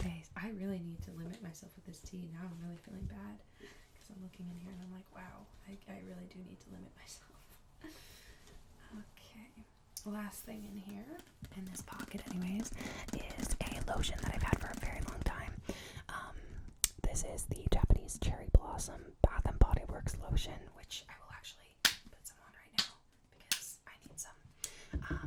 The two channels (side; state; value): both; identical; correlation 1.00